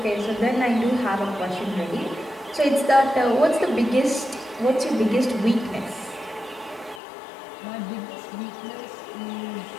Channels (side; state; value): right; drops out; at 7.0 s